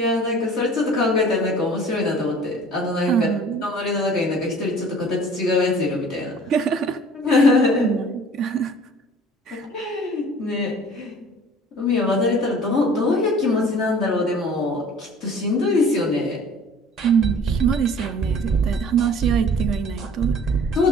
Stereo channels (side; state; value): both; normal; correlation 0.48